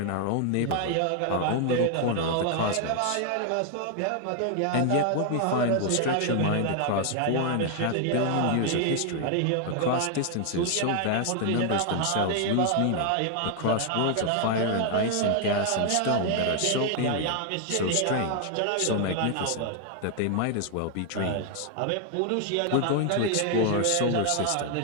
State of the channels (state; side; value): different; both; correlation 0.00